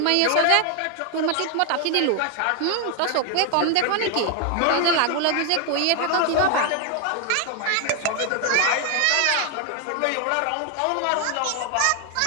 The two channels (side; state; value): both; different; correlation 0.01